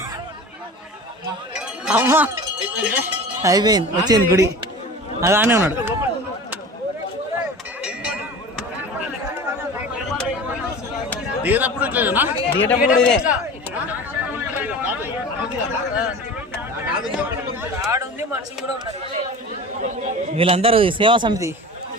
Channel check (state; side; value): normal; both; correlation 0.36